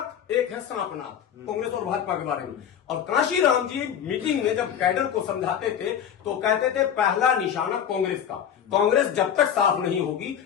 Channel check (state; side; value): quieter; right; 8.9 dB